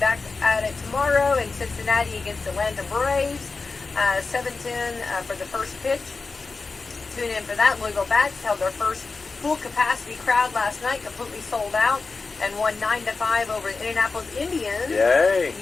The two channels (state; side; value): quieter; right; 4.1 dB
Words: at it tomorrow in Cincinnati against the Atlanta Braves. 7:10 for the first pitch. Tune in for that. Louisville Bats held their first full capacity crowd last night, completely sold out, and won 9-5 over the Indianapolis Indians. Yay!